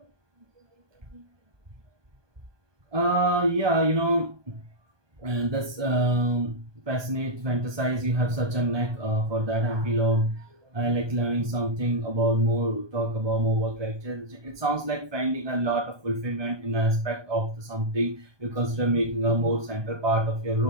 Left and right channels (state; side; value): late; left; 1.2 ms